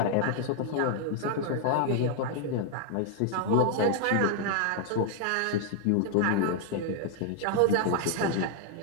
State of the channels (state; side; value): different; both; correlation 0.00